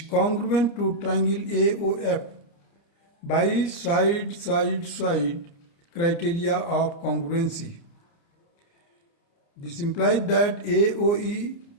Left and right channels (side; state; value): right; late; 30 ms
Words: congruent to triangle AOF by side criteria of congruency. This implies that AOE